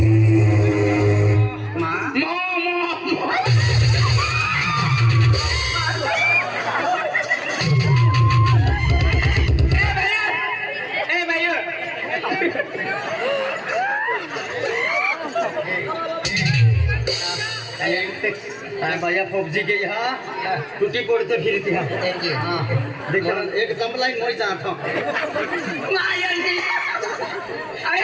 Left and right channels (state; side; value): identical; both; correlation 1.00